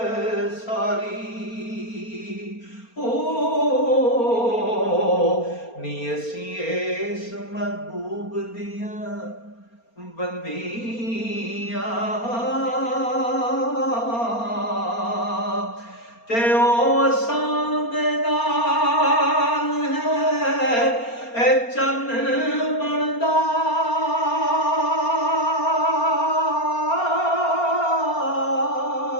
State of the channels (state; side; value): late; right; 4.3 ms